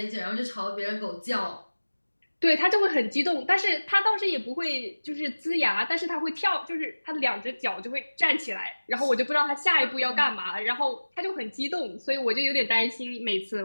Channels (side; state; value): both; inverted; correlation -1.00